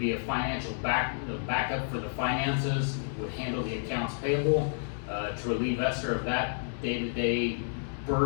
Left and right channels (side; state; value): right; silent; digital silence